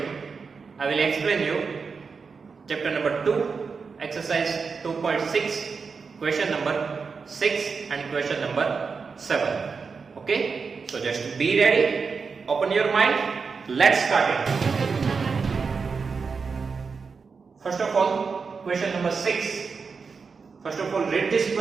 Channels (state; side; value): quieter; left; 5.1 dB